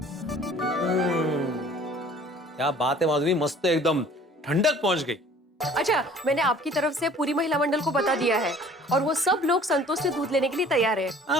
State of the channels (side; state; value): both; normal; correlation 0.51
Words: क्या बात है माधवी, मस्त एकदम ठंडक पहुंच गई। अच्छा, मैंने आपकी तरफ से पूरी महिला मंडल को बता दिया है और वो सब लोग संतोष से दूध लेने के लिए तैयार है।